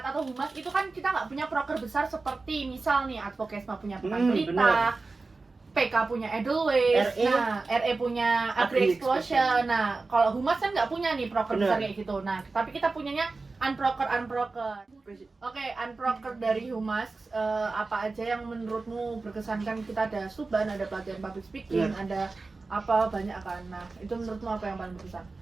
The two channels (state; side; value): quieter; left; 3.8 dB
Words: atau humas itu kan kita nggak punya proker besar seperti misal nih Advokesma punya Pekan Pelita, bener. PK punya Edelweiss, RE. nah RE punya Agri Explosion. Nah, kalau humas kan nggak punya nih proker Bener. besar kayak gitu. Nah, tapi kita punyanya unproker. Oke, unproker dari humas apa aja yang menurutmu berkesan? Kan kita ada Suban, ada pelatihan public speaking, ada apa banyak kan. Nah, itu menurutmu apa yang paling berkesan?